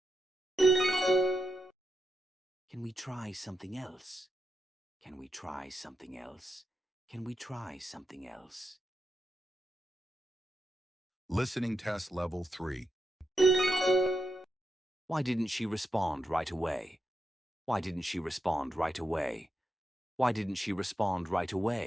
Can we try something else? Can we try something else? Can we try something else? Listening test level 3. Why didn't she respond right away? Why didn't she respond right away? Why didn't she respond right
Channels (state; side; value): normal; both; correlation 0.86